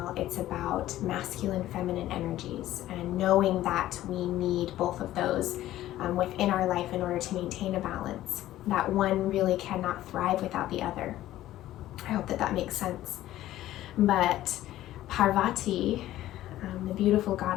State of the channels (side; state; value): right; quieter; 14.3 dB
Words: it's about masculine, feminine energies, and knowing that we need both of those within our life in order to maintain a balance. That one really cannot thrive without the other. I hope that makes sense. But Parvati, the beautiful